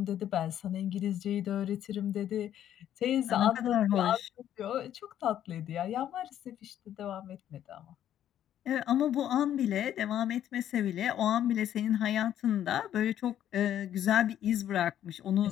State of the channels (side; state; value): right; quieter; 10.9 dB